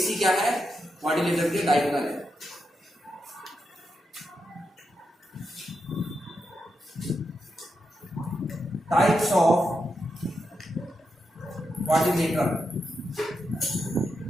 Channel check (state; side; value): normal; both; correlation 0.85